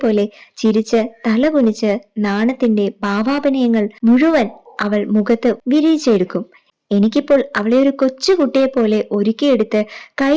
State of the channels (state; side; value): identical; both; correlation 1.00